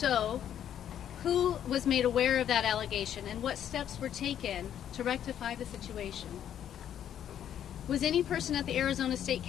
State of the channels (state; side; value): quieter; right; 10.0 dB